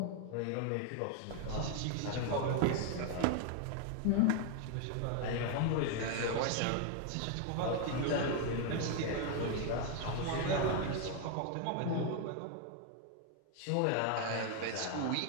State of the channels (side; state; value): both; different; correlation 0.01